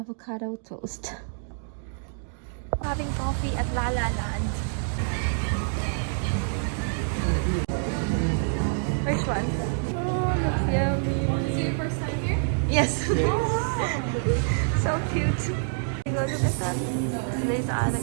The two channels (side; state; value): left; silent; digital silence